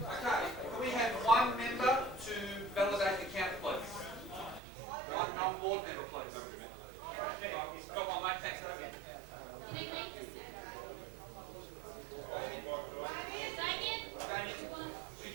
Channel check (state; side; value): drops out; left; at 4.6 s